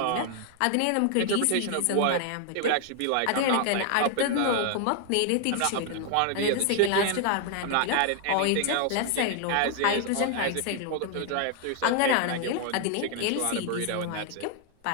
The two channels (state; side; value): different; both; correlation 0.00